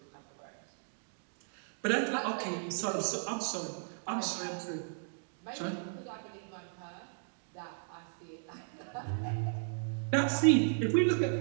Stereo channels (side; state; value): left; silent; digital silence